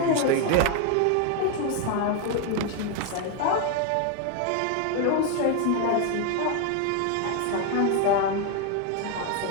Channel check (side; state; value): both; different; correlation 0.01